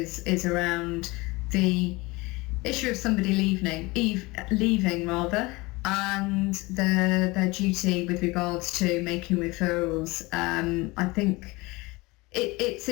around the issue of somebody leaving and their duty with regards to making referrals. I think it's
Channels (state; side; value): quieter; right; 23.2 dB